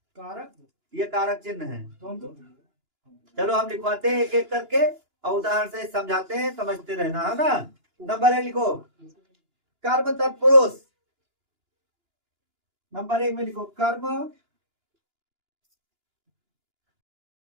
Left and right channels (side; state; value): left; late; 2.9 ms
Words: कारक, ये कारक चिन्ह है। चलो हम लिखवाते हैं एक एक करके और उदाहरण से समझाते हैं, समझते रहना है ना। नंबर 1 लिखो, कर्म तत्पुरुष। नंबर 1 में लिखो, कर्म